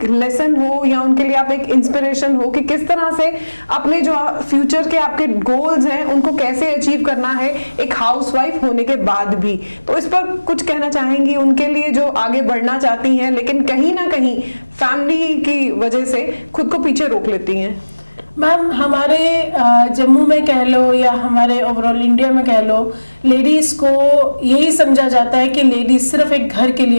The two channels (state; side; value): inverted; both; correlation -1.00